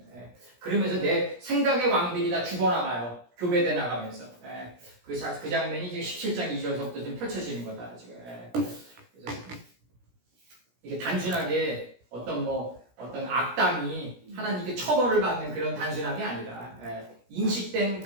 그러면서 내 생각의 왕들이 다 죽어나가요. 교배돼 나가면서. 그 장면이 지금 17장 2절부터 좀 펼쳐지는 거다 지금. 그래서 이게 단순하게 어떤 악당이 하나님께 처벌을 받는 그런 단순함이 아니다. 인식된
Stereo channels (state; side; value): late; left; 17 ms